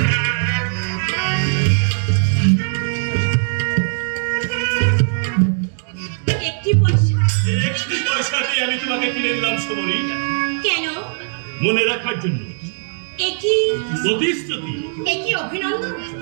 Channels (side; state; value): left; silent; digital silence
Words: একটি পয়সা? এই একটি পয়সা দিয়ে আমি তোমাকে কিনে নিলাম সমরি, কেন? মনে রাখার জন্য, একই প্রতিশ্রুতি। একই অভিনন্দন?